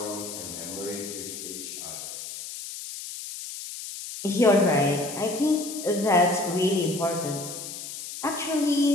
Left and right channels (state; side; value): noise; left; hiss, 9 dB below the sound